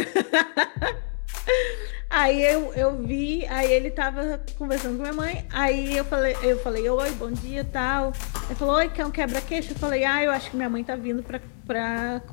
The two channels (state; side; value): silent; right; digital silence